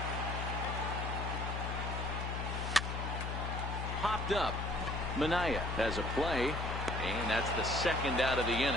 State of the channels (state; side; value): noise; left; hum, 3 dB below the sound